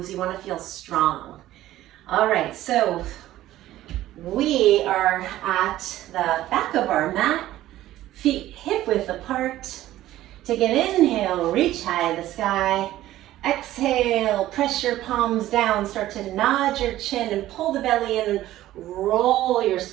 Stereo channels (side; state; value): left; quieter; 14.5 dB